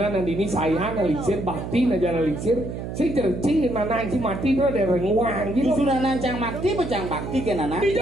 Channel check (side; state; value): right; noise; hum, 7 dB below the sound